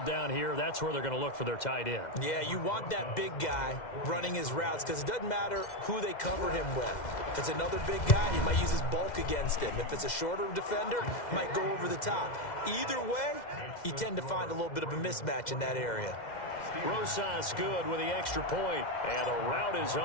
here. That's where they're going to look for their tight end. Yeah, you want that big guy running his routes because it doesn't matter who they cover him with. If it's another big guy, he might use his bulk against him. If it's a shorter defender, he might go over the top. Either way, you tend to find a little bit of a mismatch in that area. Rosas good with the extra point. And the route is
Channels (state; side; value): late; right; 2.1 ms